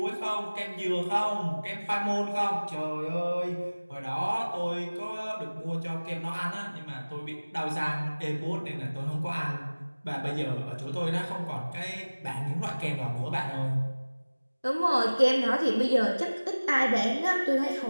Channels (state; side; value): inverted; both; correlation -1.00